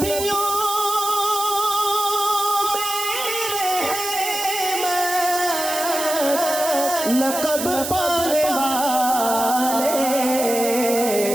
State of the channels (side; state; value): right; noise; hiss, 5 dB below the sound